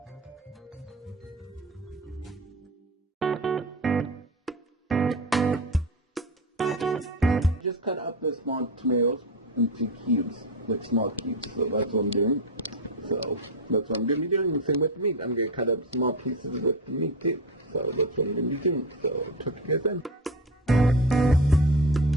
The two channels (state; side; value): normal; both; correlation 0.21